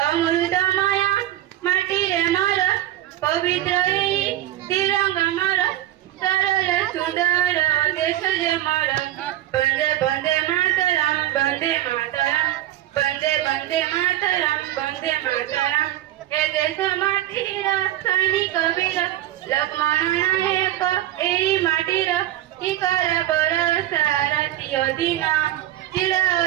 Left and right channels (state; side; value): quieter; left; 14.0 dB